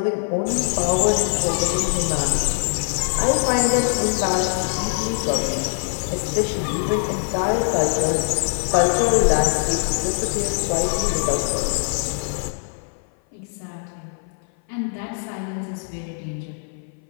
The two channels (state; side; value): silent; right; 56 dB below the other